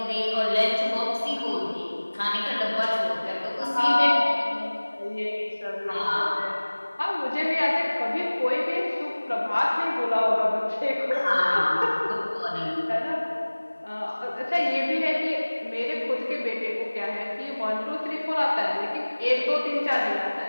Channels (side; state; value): both; inverted; correlation -1.00